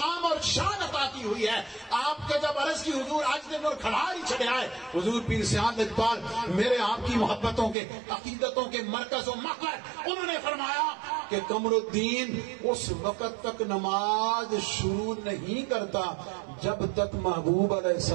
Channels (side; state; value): left; drops out; at 7.8 s